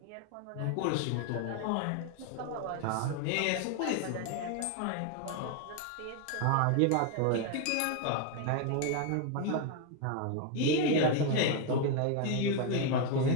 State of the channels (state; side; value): different; both; correlation 0.01